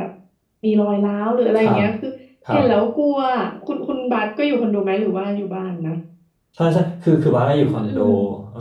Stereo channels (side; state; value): both; identical; correlation 1.00